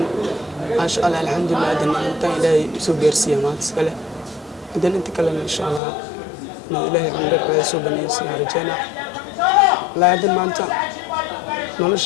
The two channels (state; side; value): drops out; right; at 5.8 s